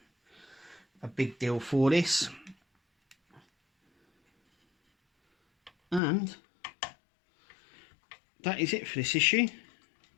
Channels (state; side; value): drops out; right; at 6.0 s